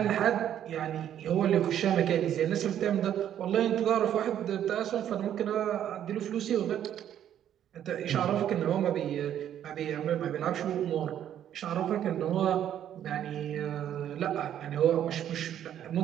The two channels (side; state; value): left; quieter; 10.4 dB